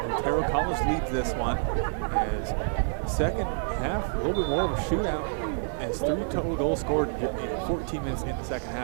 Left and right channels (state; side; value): silent; left; digital silence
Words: College leads this one. As second half, a little bit more of a shootout. As 3 total goals scored in 14 minutes in the second